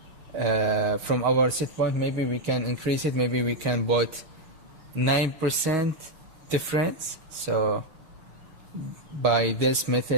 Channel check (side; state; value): left; late; 6.4 ms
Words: from our set point, maybe we can increase it. Maybe we can put 9% difference. So by this